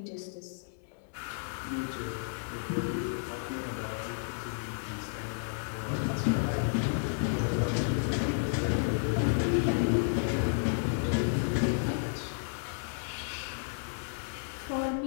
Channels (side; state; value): right; silent; 56 dB below the other